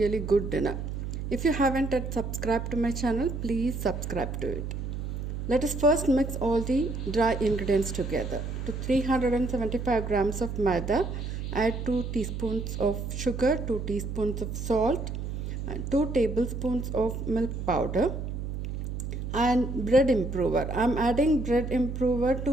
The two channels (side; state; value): right; noise; hum, 5 dB below the sound